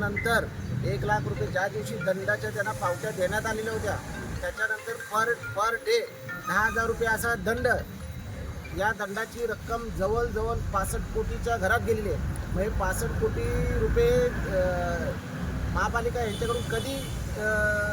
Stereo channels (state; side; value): identical; both; correlation 1.00